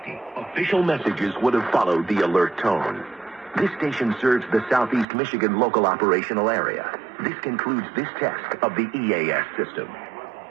official messages would have followed the alert tone. This station serves the Southeast Michigan local operational area. This concludes this test of the EAS system.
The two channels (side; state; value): left; drops out; at 5.1 s